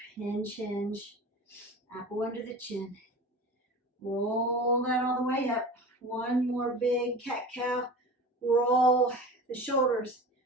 Hinge, hinge, apple under the chin. Roll that all the way up. One more big cat-cow. Roll the shoulders,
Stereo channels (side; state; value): both; normal; correlation 0.35